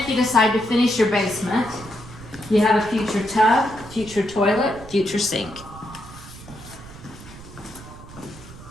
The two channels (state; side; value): noise; right; rumble, 17 dB below the sound